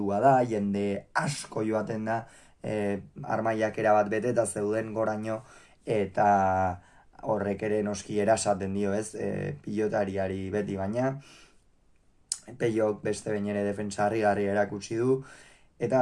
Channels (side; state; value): both; identical; correlation 1.00